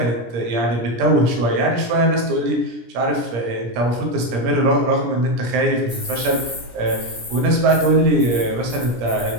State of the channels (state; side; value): late; left; 17 ms